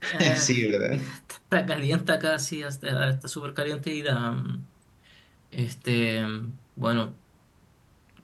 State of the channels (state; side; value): identical; both; correlation 1.00